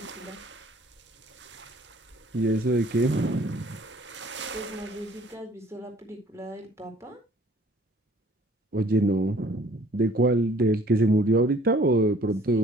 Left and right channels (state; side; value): normal; both; correlation 0.55